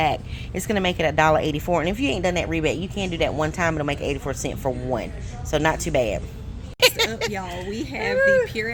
It's gonna make it $1.84. And if you ain't done that rebate, you can do that one time. It'll make 84 cents for one. So not too bad. Next up, y'all, we have the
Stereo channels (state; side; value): identical; both; correlation 1.00